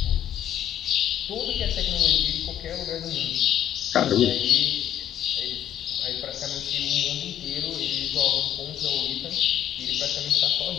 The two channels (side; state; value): right; quieter; 10.7 dB